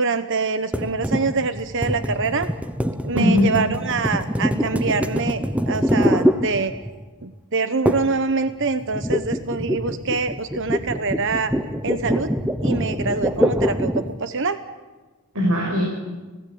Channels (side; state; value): both; normal; correlation 0.35